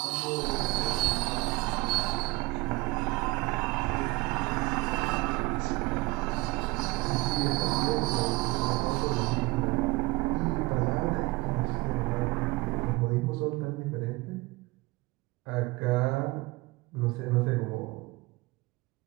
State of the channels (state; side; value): quieter; left; 22.4 dB